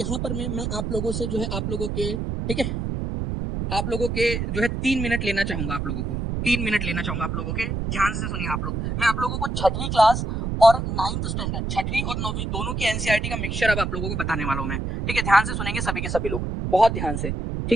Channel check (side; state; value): right; noise; rumble, 2 dB below the sound